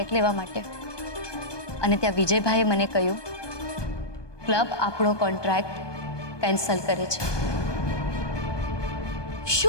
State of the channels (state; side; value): late; right; 1.2 ms